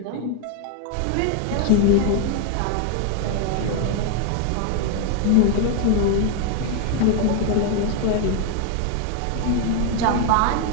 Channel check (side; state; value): both; different; correlation 0.01